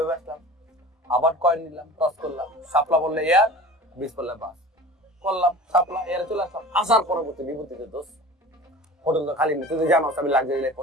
আসলাম? আবার কয়েন নিলাম, টস করলাম, সাপলা বললে এয়ার, বিষ বললে বাস, করলাম সাপলা, এয়ারে চলে আসলাম। আসার পরবর্তী বিভূতিতে দোষ, হোটেল তো খালি নেই, তুই তো জানো আমি লাক্সারি লাইফ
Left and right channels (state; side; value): normal; both; correlation 0.39